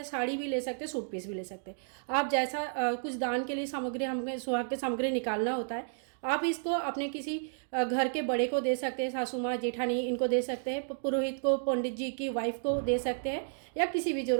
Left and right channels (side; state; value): left; silent; digital silence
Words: साड़ी भी ले सकते हैं, सूट पीस भी ले सकते हैं। आप जैसा कुछ दान के लिए सामग्री, हमें सुहाग की सामग्री निकालना होता है, आप इसको अपने किसी घर के बड़े को दे सकते हैं, सासू माँ, जेठानी, इनको दे सकते हैं, पुरोहित को, पंडित जी की वाइफ को दे सकते हैं, या किसी भी